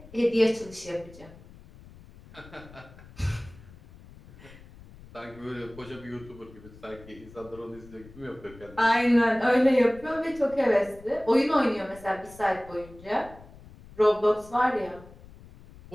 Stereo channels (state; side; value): noise; left; rumble, 20 dB below the sound